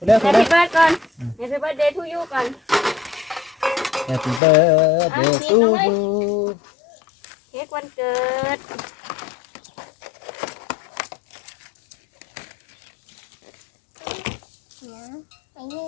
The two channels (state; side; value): drops out; right; at 4.4 s